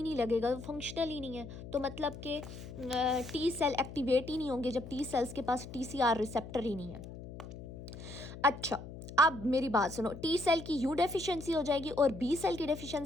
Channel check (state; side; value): noise; left; hum, 12 dB below the sound